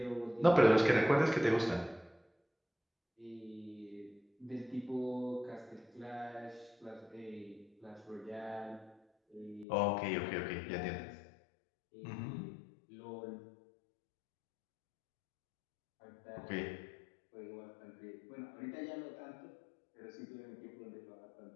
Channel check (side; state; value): right; drops out; at 9.7 s